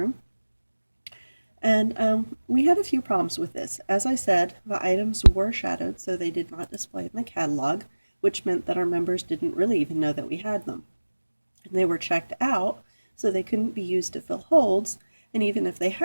And we had a few problems with this. As I said, the items were shadowed, so they did not display in the catalog, which meant that our members didn't really even know that we had them. And they were checked out, so they couldn't be used to fill holds, and even if they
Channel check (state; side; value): inverted; both; correlation -1.00